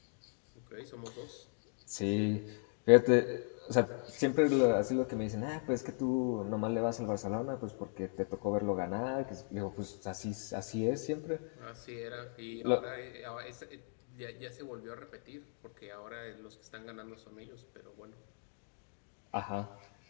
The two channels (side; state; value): right; silent; 53 dB below the other